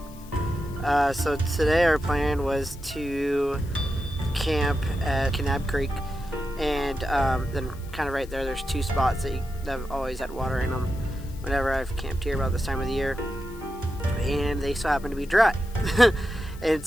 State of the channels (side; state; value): left; noise; hiss, 22 dB below the sound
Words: So today our plan was to camp at Kanab Creek, and then kind of right there's 2 spots that have always had water in them whenever I've camped here about this time of the year, and they so happen to be dry. And